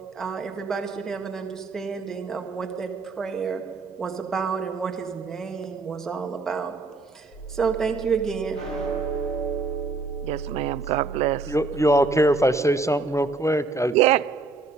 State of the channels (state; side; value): quieter; left; 3.8 dB